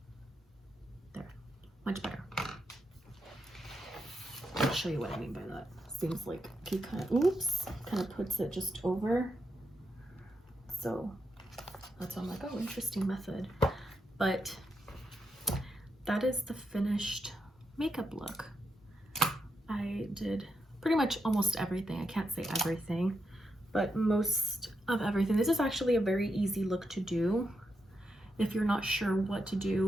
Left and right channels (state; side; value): normal; both; correlation 0.84